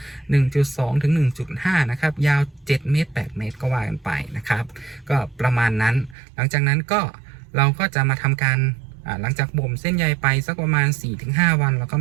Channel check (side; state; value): left; drops out; at 6.2 s